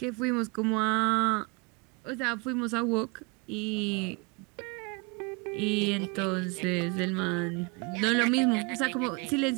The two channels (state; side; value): quieter; left; 29.1 dB